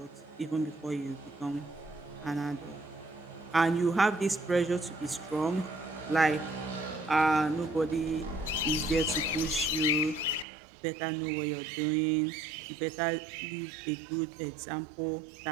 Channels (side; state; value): left; drops out; at 10.5 s